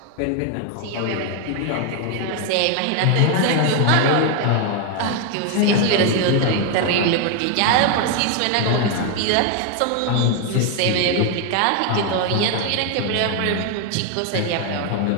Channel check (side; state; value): both; different; correlation 0.01